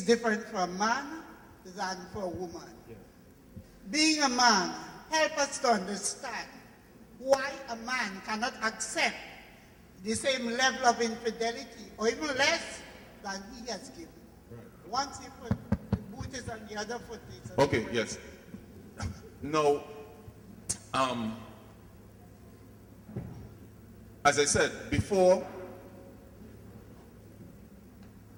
different for a man than for a woman. Being a man, help us to understand why a man cannot accept the same level of infidelity or even less than he has given. Once he put the boot is on the other foot. Okay, yes. Now, as I said before,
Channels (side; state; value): both; identical; correlation 1.00